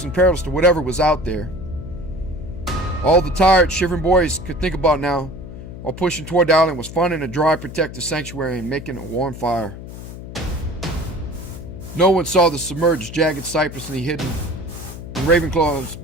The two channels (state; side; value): noise; left; hum, 12 dB below the sound